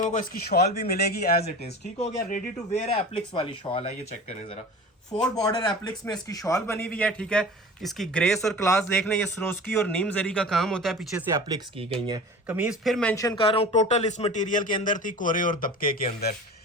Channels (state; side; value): normal; both; correlation 0.37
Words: को इसकी शॉल भी मिलेगी एज इट इज, ठीक हो गया। रेडी टू वेयर है, एप्लिक्स वाली शॉल है। ये चेक करें जरा, 4 बॉर्डर एप्लिक्स में इसकी शॉल बनी हुई है, ठीक है। इसकी ग्रेस और क्लास देख लें, ये सरोस्की और नीम जरी का काम होता है, पीछे से एप्लिक्स की गई है। कमीज फिर मेंशन कर रहा हूँ, टोटल इस मटेरियल के अंदर थी कोरे और दबके के अंदर।